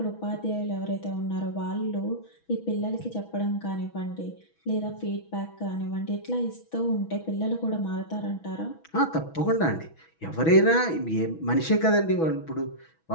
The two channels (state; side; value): late; right; 6.2 ms